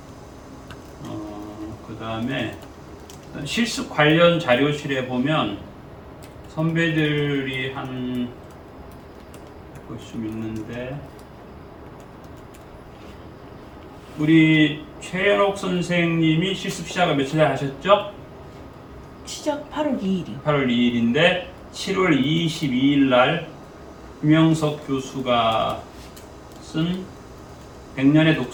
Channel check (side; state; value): both; identical; correlation 1.00